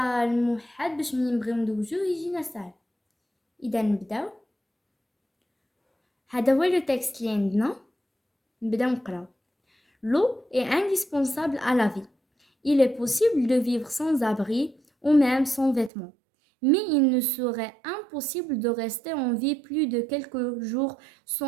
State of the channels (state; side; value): drops out; left; at 15.9 s